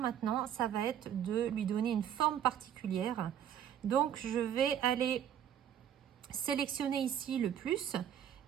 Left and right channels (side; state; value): left; quieter; 9.7 dB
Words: ça va être de lui donner une forme particulière. Donc, je vais aller sélectionner ici le plus